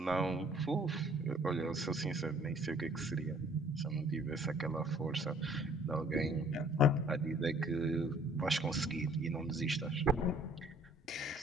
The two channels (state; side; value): normal; both; correlation 0.58